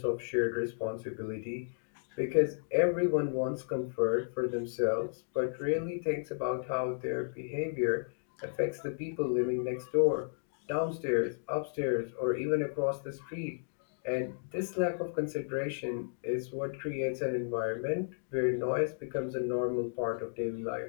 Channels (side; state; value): right; silent; digital silence